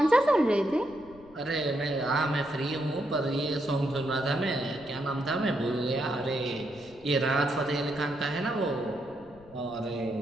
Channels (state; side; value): noise; left; rumble, 24 dB below the sound